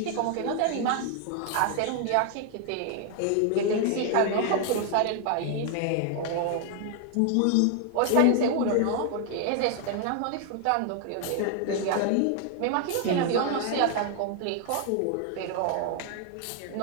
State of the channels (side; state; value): both; different; correlation 0.00